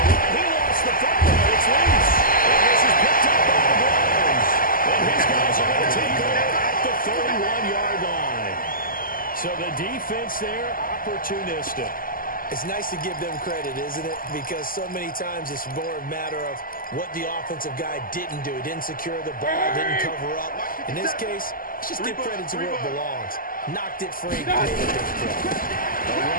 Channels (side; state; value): right; late; 0.41 ms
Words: He lost the football. It's loose. And this is picked up by the Browns. And his guys are going to take over at the 31-yard line. So the defense there, opportunistic. It's nice to give them credit, isn't it? Because so many times it's more a matter of what the offensive guy didn't do. He didn't secure the ball, didn't cover up. In this case, let's just give credit to where it belongs. Knocked it free. Made a big play. A